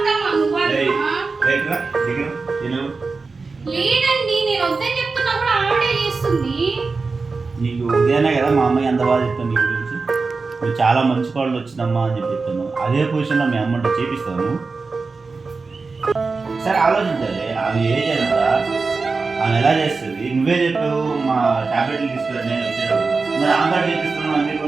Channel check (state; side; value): quieter; left; 4.2 dB